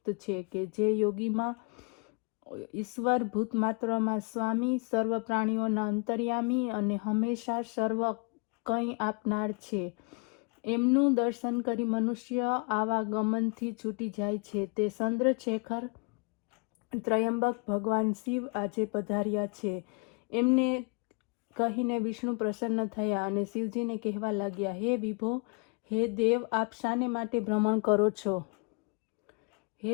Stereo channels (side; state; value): right; quieter; 33.2 dB